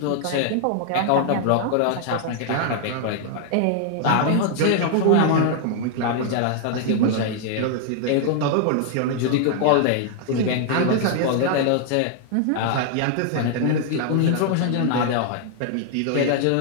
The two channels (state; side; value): different; both; correlation 0.00